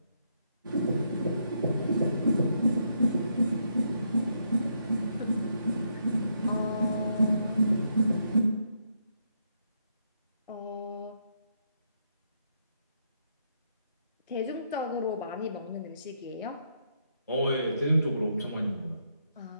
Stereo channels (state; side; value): inverted; both; correlation -0.77